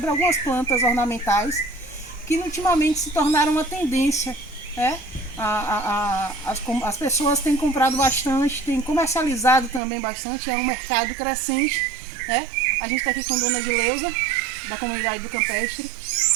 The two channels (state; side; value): drops out; left; at 9.8 s